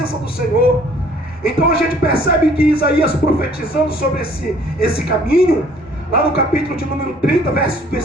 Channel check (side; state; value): both; normal; correlation 0.57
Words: do Senhor. Então a gente percebe que Isaías, profetizando sobre esse caminho, lá no capítulo de número 30,